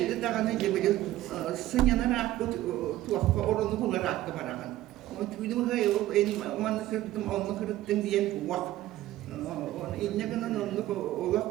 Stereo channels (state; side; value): quieter; left; 14.9 dB